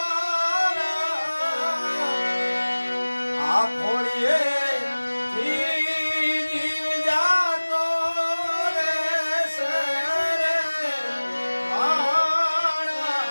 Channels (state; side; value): inverted; both; correlation -1.00